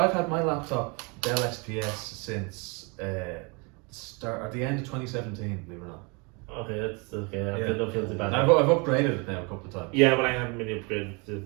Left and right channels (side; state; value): left; quieter; 31.1 dB